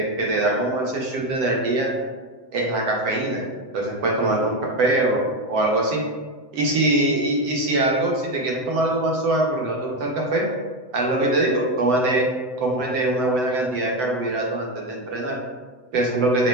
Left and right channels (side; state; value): left; late; 7.9 ms